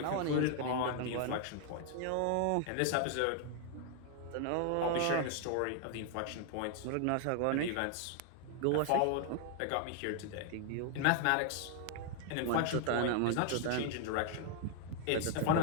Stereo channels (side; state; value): both; different; correlation 0.00